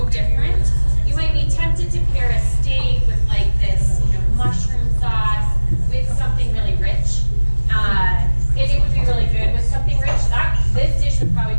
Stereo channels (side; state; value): both; inverted; correlation -1.00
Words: different, you might be tempted to pair a steak with like this, mushroom sauce with something really rich. And it would be really good with something rich. This dish would probably